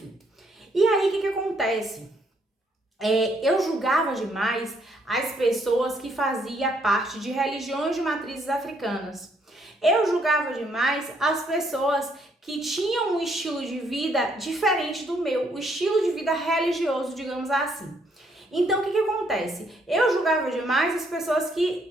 E aí, o que acontece? Eu julgava demais as pessoas que faziam parte de religiões de matrizes africanas. Eu julgava demais as pessoas que tinham um estilo de vida diferente do meu, o estilo de vida religioso, digamos assim. Então, o que acontece? Eu julgava demais as pessoas que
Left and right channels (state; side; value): normal; both; correlation 0.70